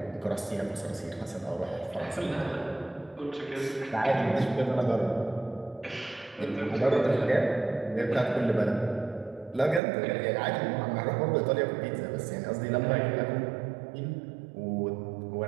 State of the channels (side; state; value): left; drops out; at 9.8 s